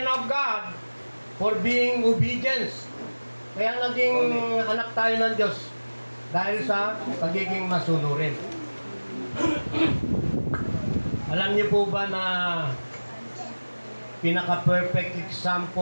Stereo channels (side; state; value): both; inverted; correlation -1.00